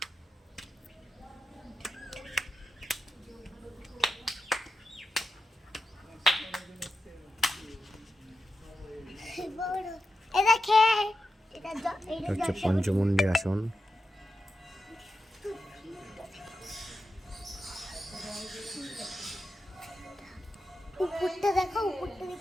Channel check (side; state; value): both; normal; correlation 0.89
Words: হচ্ছে পঞ্চমুণ্ডী আসন। উপরটা দেখো, উপরটা